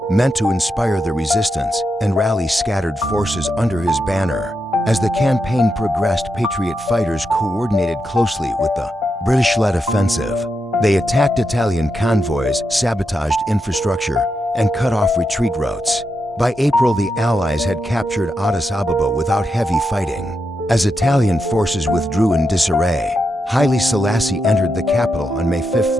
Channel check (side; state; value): both; normal; correlation 0.85